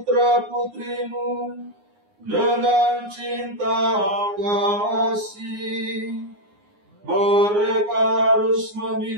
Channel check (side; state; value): left; late; 9.6 ms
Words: dengan cinta kasih. Mereka harus